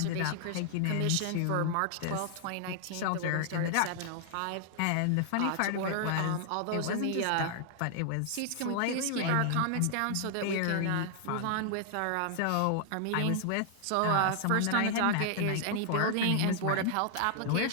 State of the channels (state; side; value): different; both; correlation 0.00